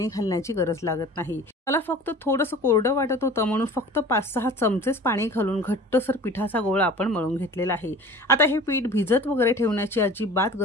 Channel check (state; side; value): normal; both; correlation 0.42